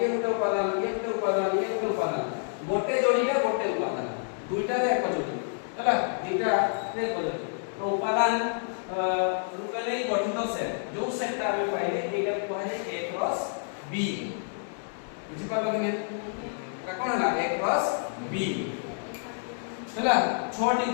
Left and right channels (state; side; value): silent; right; digital silence